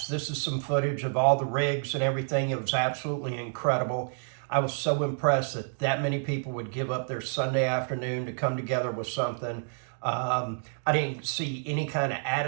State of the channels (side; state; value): left; silent; digital silence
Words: This is some footage of all the rigs and everything. It was absolutely incredible. I was so impressed that many people would give up their Sunday afternoon to come together with something. I didn't see any kind of